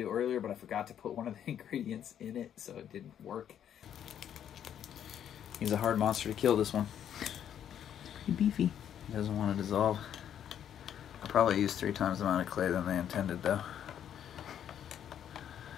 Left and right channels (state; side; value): quieter; right; 9.6 dB